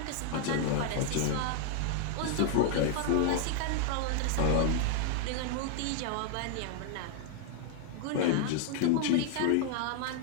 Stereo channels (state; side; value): different; both; correlation 0.00